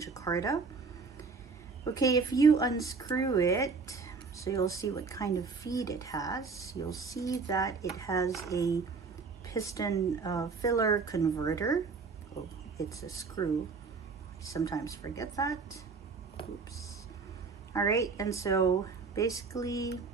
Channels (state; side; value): quieter; left; 4.7 dB